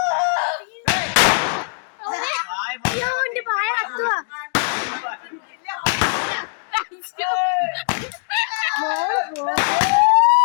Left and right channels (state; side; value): silent; right; digital silence